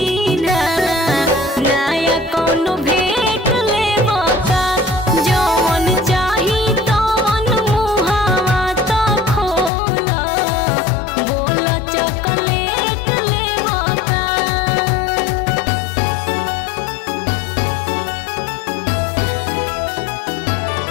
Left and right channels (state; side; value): drops out; right; at 9.7 s